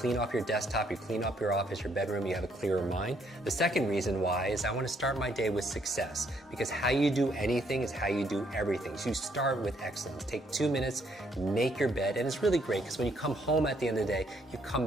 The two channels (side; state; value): both; normal; correlation 0.70